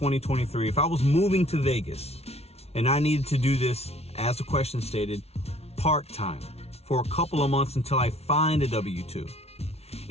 if I was moving to Vegas and I needed to do this, as the question stated, part-time for a couple of months until I find a W-2,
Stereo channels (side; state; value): right; late; 0.30 ms